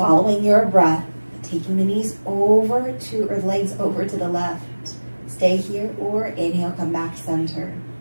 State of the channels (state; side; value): inverted; both; correlation -1.00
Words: your breath, taking the knees over to, or legs over to the left. Stay here or inhale, come back center.